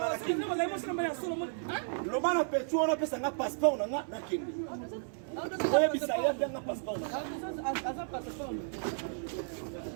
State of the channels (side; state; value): left; silent; 55 dB below the other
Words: kindi lo bana petu wana apesa nga passeport na ngana kindi yebisa yebanga passeport